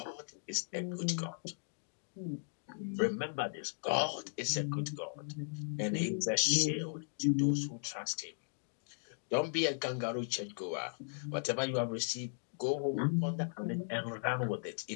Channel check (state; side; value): silent; right; digital silence